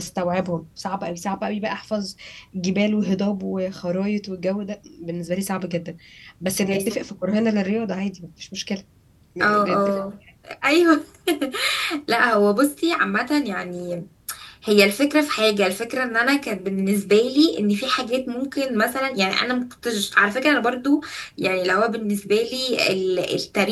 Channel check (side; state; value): both; identical; correlation 1.00